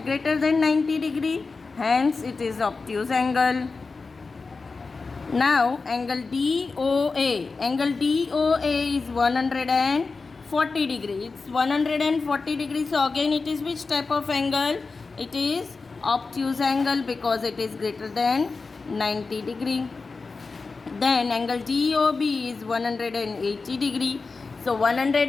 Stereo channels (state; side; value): quieter; right; 4.2 dB